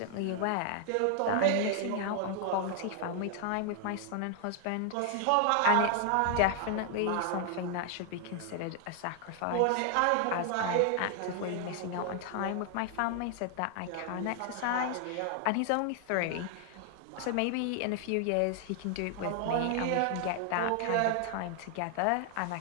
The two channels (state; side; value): different; both; correlation 0.00